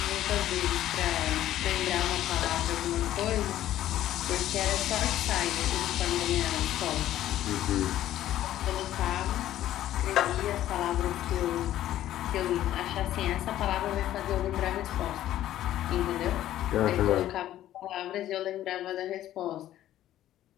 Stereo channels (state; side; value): quieter; right; 13.0 dB